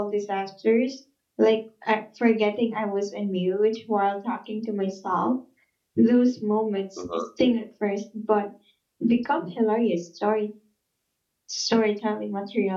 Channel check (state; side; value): identical; both; correlation 1.00